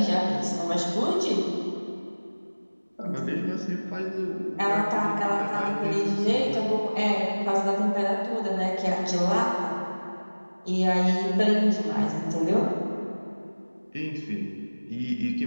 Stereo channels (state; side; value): inverted; both; correlation -1.00